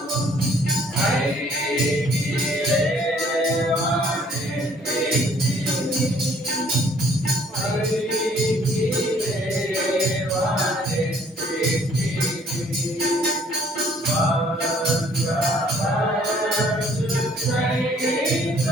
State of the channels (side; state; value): both; normal; correlation 0.60